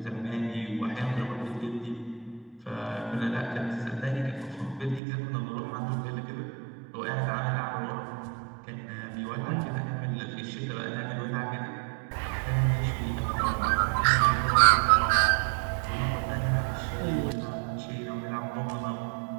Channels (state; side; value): drops out; left; at 5.0 s